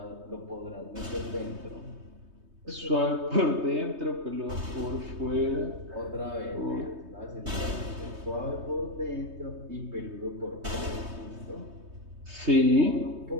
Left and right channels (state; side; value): late; left; 3.2 ms